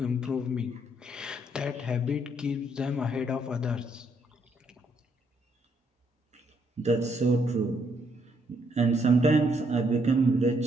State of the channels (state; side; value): normal; both; correlation 0.72